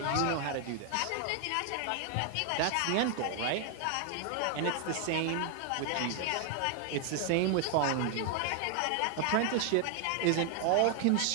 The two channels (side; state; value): both; different; correlation 0.00